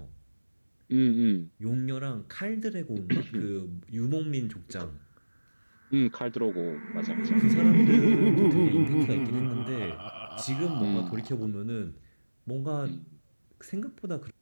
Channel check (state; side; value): inverted; both; correlation -1.00